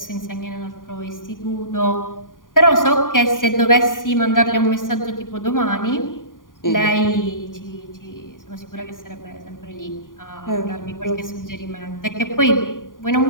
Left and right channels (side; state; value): right; late; 0.89 ms